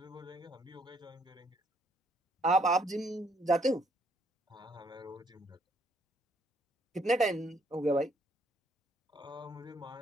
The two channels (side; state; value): both; normal; correlation 0.68